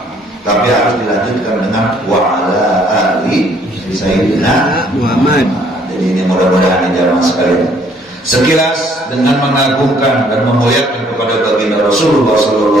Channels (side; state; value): both; normal; correlation 0.62